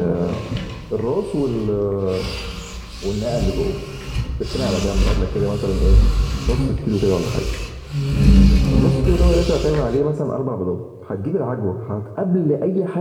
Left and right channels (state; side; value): identical; both; correlation 1.00